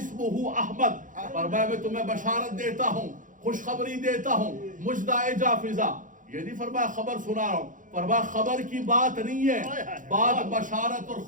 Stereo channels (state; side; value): late; left; 0.38 ms